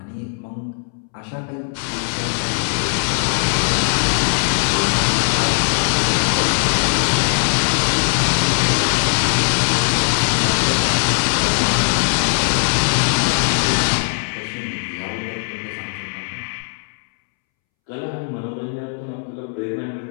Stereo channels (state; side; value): silent; right; 66 dB below the other